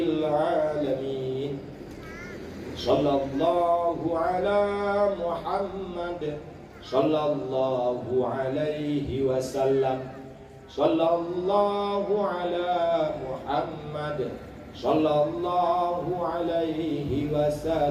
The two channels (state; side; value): identical; both; correlation 1.00